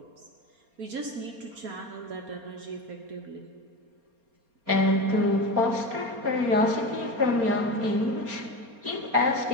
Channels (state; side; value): late; left; 4.3 ms